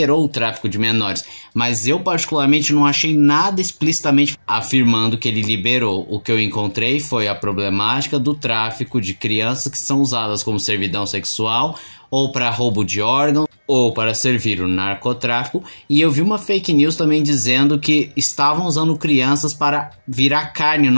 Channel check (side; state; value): both; inverted; correlation -1.00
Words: o tráfico de menores, mas eu particularmente não achei nada explicitamente afirmando que ele liberou. O que eu encontrei foi a problemática do tráfico de crianças que são usadas como servidão sexual, ou para roubo de órgãos, ou para servir o narcotráfico, e eu vi uma fake news também dizendo que estavam usando crianças para virar carne